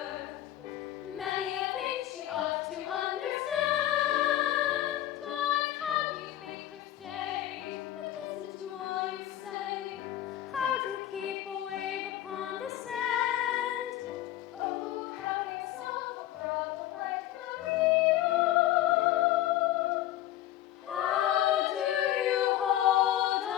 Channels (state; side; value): quieter; right; 13.3 dB